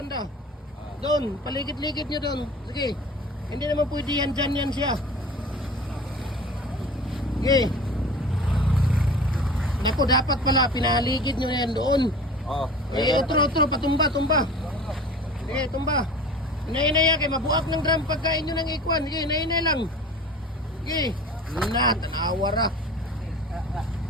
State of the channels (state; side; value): normal; both; correlation 0.40